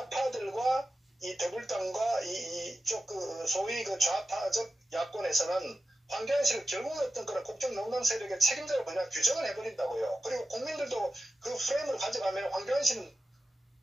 이 더불당과 이쪽 소위 좌파적 야권에서는 황교안 씨를 결국 어떤 그런 국정농단 세력의 책임자로 그냥 규정을 해버린다고요. 그리고 국민들도 그 프레임을 가져가면 황교안 씨는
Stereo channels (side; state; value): both; normal; correlation 0.93